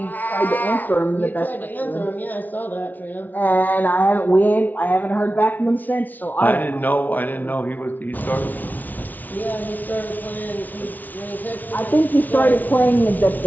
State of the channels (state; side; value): late; right; 0.081 ms